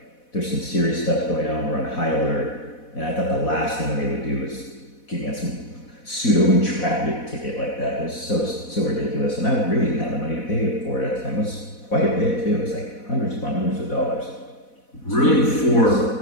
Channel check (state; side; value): late; right; 4.1 ms